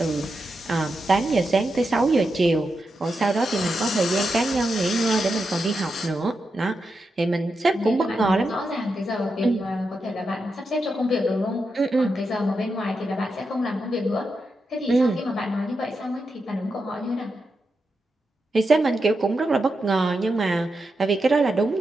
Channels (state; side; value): normal; both; correlation 0.87